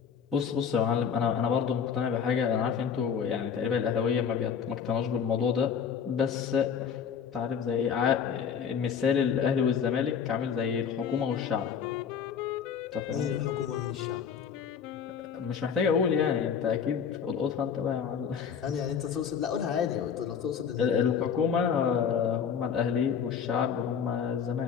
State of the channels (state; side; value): quieter; right; 7.2 dB